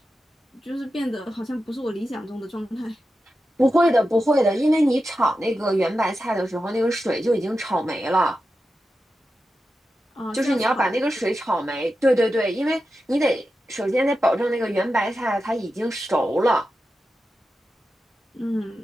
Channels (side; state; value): both; normal; correlation 0.91